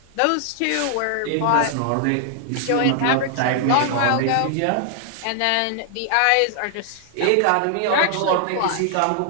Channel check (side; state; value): both; different; correlation 0.00